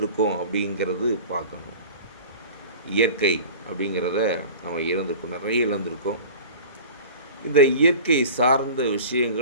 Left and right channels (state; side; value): inverted; both; correlation -0.39